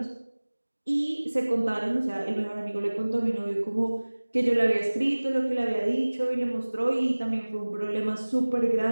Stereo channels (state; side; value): inverted; both; correlation -1.00